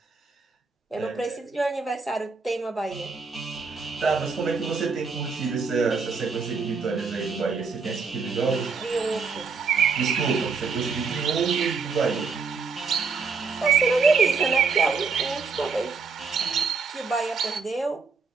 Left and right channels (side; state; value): left; quieter; 5.0 dB